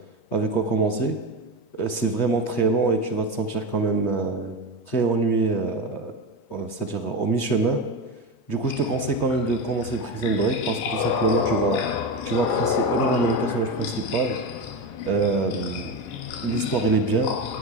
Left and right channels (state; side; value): late; right; 8.4 ms